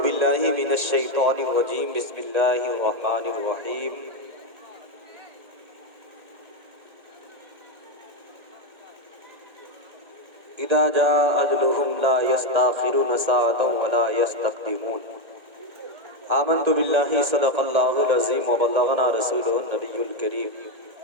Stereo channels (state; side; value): late; left; 1.9 ms